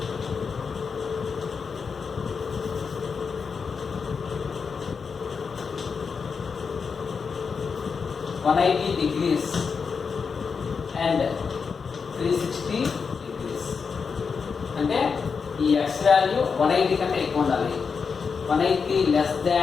180 degrees and 360 degrees. అంటే ఈ x వాల్యూ 180 కంటే ఎక్కువ ఉండాలి, 180 less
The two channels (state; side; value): quieter; right; 5.6 dB